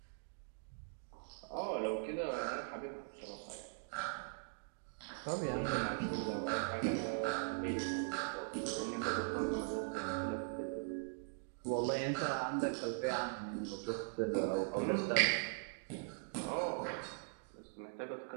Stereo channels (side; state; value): left; silent; digital silence